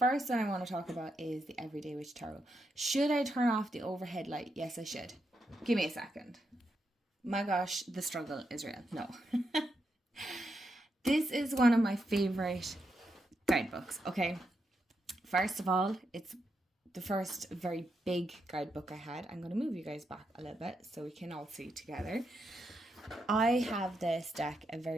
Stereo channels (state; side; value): normal; both; correlation 0.83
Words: one I want to talk about is the Everyday Witch Tarot. Should I turn off the overhead light? Yes, I should. Give me a second. My gosh, the struggle is real. No. This is one of my favorite guidebooks, okay? First of all, it's the first very big guidebook I had. I'm going to move you guys back a little bit so we can all see together. I have this deck a